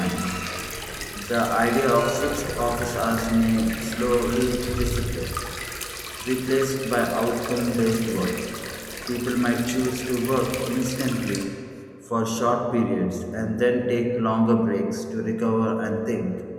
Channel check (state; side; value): identical; both; correlation 1.00